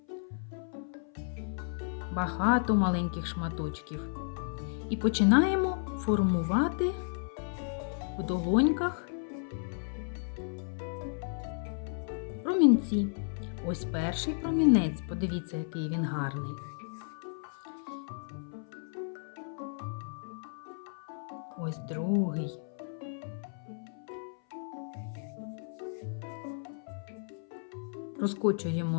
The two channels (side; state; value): right; silent; 56 dB below the other